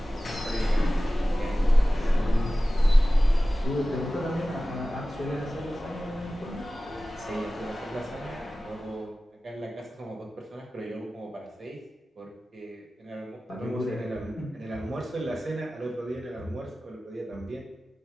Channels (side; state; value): both; normal; correlation 0.96